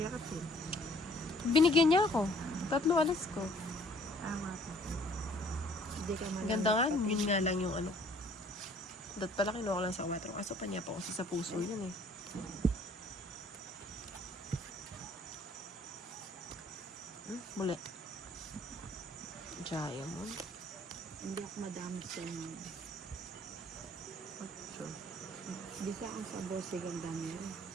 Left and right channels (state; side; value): normal; both; correlation 0.57